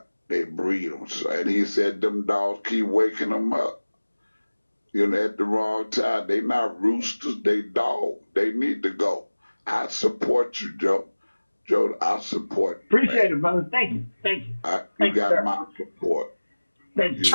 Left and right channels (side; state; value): both; inverted; correlation -1.00